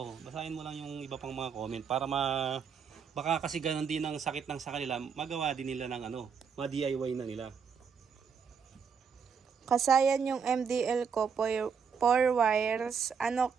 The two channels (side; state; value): left; quieter; 6.4 dB